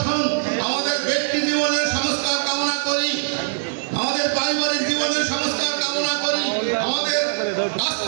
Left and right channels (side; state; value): left; silent; digital silence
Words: আমাদের ব্যক্তি জীবনের সংস্কার কামনা করি, আমাদের পারিবারিক জীবনের সংস্কার কামনা করি, আমাদের